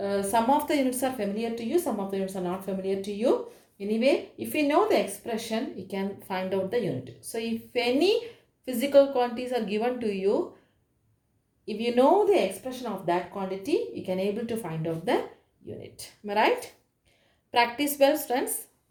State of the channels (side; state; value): both; identical; correlation 1.00